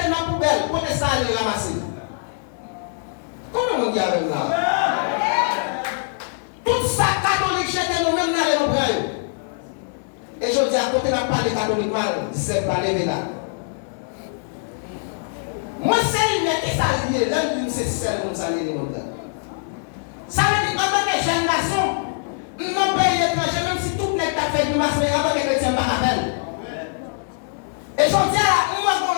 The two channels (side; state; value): right; silent; digital silence